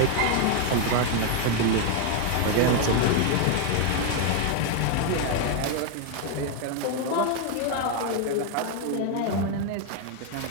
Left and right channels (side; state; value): both; different; correlation 0.00